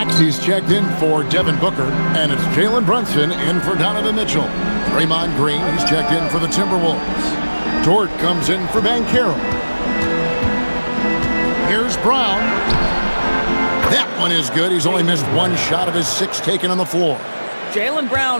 checked in for Devin Booker. And it's Jalen Brunson in for Donovan Mitchell. Draymond Green, he's checked in for the Timberwolves. Dort comes in for Banchero. Here's Brown. That one is good. He's only missed one shot of his 6 taken on the floor. Jaylen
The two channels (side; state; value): both; inverted; correlation -1.00